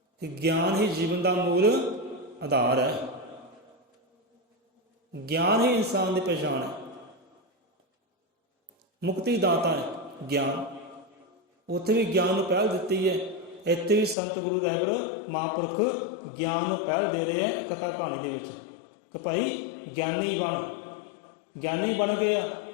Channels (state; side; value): drops out; right; at 14.2 s